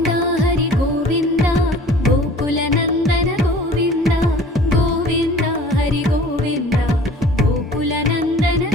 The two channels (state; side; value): normal; both; correlation 0.48